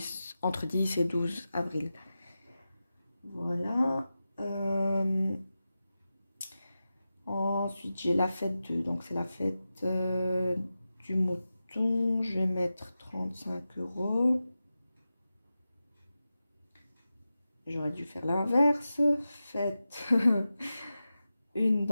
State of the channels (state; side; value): inverted; both; correlation -0.93